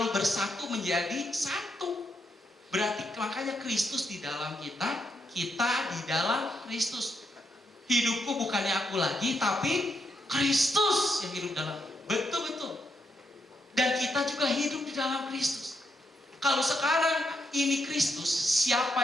bersatu menjadi satu, berarti makanya Kristus di dalam kita, kita di dalam Kristus. Hidupku bukannya aku lagi, tapi Kristus yang hidup dalam. Betul-betul. Dan kita juga hidup di dalam Kristus. Kalau sekarang ini Kristus, siapa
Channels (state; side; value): normal; both; correlation 0.80